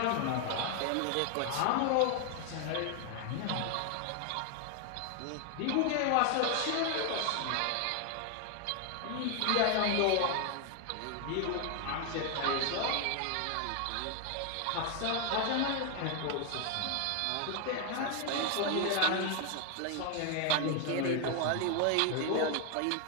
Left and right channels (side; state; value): both; different; correlation 0.01